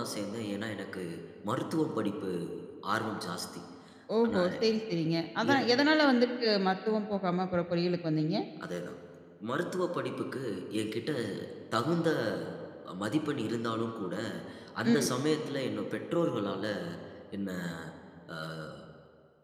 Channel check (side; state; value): both; identical; correlation 1.00